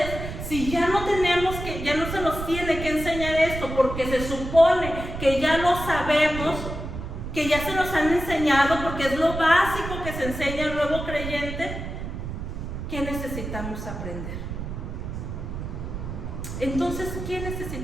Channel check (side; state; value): right; noise; rumble, 7 dB below the sound